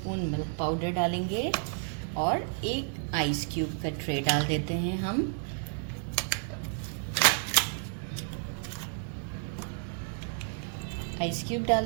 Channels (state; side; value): silent; left; 57 dB below the other